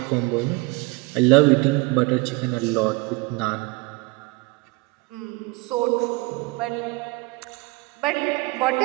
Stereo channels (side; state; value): left; quieter; 24.3 dB